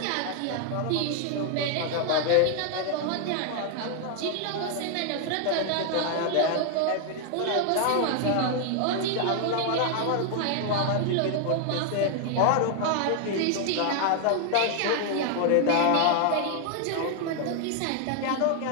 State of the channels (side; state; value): both; different; correlation 0.00